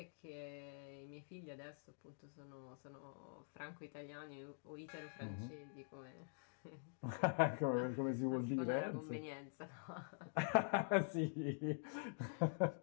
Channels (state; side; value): silent; right; digital silence